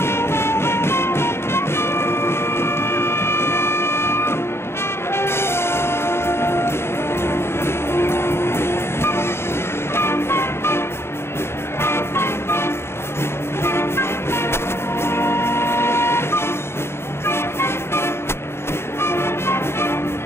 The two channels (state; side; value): late; right; 0.12 ms